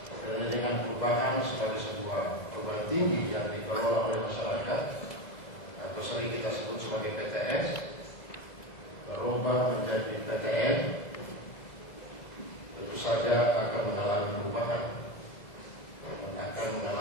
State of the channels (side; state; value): right; late; 2.0 ms